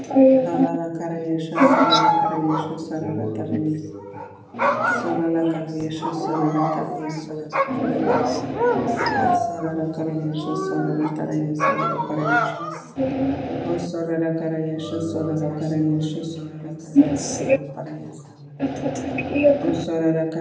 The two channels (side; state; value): both; identical; correlation 1.00